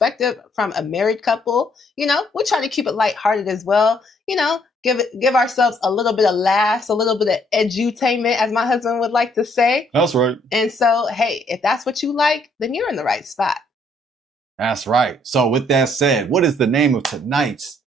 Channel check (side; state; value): both; normal; correlation 0.67